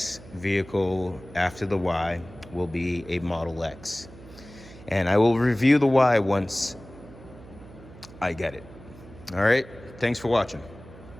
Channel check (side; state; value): right; noise; hum, 19 dB below the sound